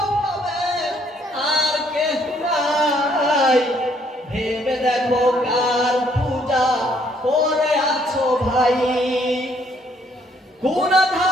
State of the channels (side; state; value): both; normal; correlation 0.67